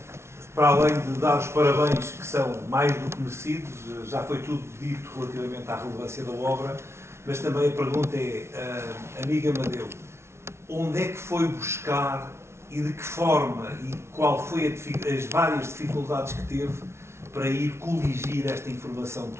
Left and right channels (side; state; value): left; late; 0.13 ms